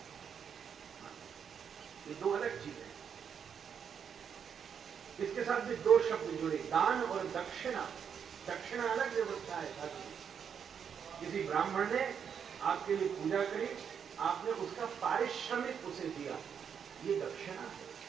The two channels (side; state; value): left; quieter; 7.4 dB